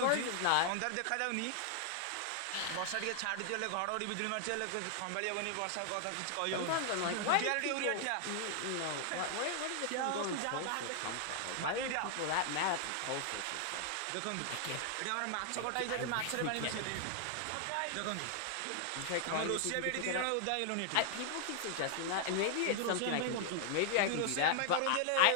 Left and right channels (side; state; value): both; different; correlation 0.00